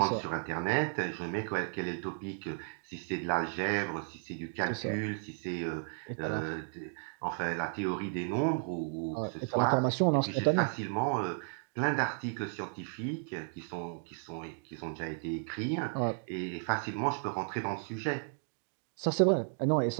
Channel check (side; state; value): left; silent; 55 dB below the other